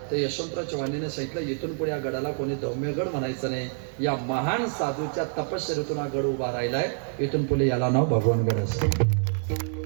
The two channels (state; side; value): silent; left; 60 dB below the other